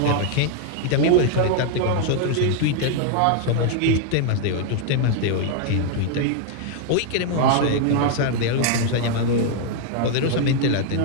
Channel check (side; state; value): both; different; correlation 0.00